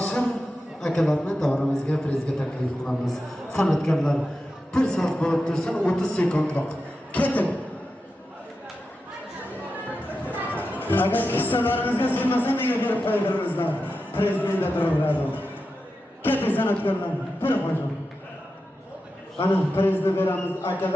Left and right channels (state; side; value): normal; both; correlation 0.90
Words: akalarni davramizga prezident taklif qilamiz. San'atkorlar bir soat bo'lib tursin 30 sekundroq. Keting. Agar hissalaringizga sig'masa nega berib qo'ydiringizlar? Prezidentda turaveradi. Keting san'atkorlar, bir qo'ying. Ana prezident beramiz